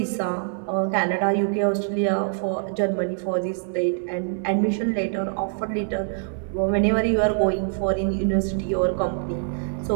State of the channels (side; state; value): left; silent; 62 dB below the other